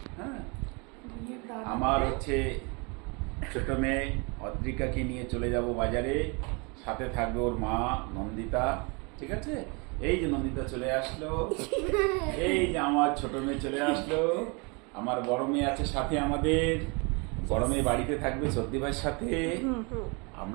হ্যাঁ, আমার হচ্ছে ছোট মেয়ে অদ্রিকাকে নিয়ে চলে যাব বাজারে, সাথে থাকবে ওর মা নন্দিতা। ঠিক আছে, এই যে নন্দিতা চলে আসলো, এই যে আমার ছোট মেয়ে চলে আসলো, আমার বড় মেয়ে আছে সাথে, আমাদের বড় মেয়ে বাড়িতে থাকবে সর্দি ভাইয়ের সাথে।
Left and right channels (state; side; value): quieter; left; 30.8 dB